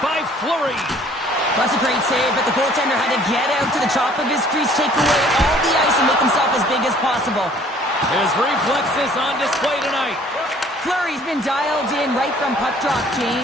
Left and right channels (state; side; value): normal; both; correlation 0.56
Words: by Fleury. That's a great save, but the goaltender had to get out to the top of his crease, take away all the ice, and make himself as big as possible. His reflexes on display tonight. Fleury's been dialed in right from puck drop,